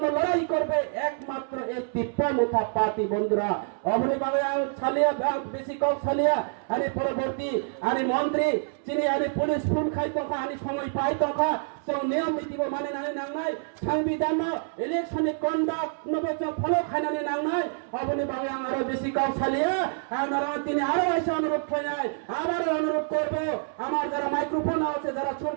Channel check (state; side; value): silent; left; 60 dB below the other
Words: লড়াই করবে একমাত্র এই tipramotha পার্টি বন্ধুরা। অবনি বাংলা ছালিয়া বেশি কম ছালিয়া আনি পরবর্তী আনি মন্ত্রী চিনি আনি পুলিশ ফুল খাই তফা আনি সময় পাই তফা जों नियम नीतिबो मानिनानै नांनाय संविधान इलेक्शननि कन्डाक्ट नबोजों फलो खायनानै नांनाय अबनि बागै आं आरो बेसि कौसालिया आंनारा তিনি আরো এসে অনুরোধ খাইনাই আবারও অনুরোধ করব আমার যারা মাইক্রোফোন আছে যারা